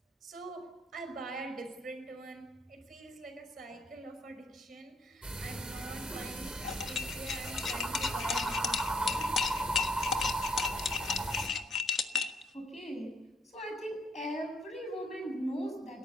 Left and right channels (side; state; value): both; normal; correlation 0.69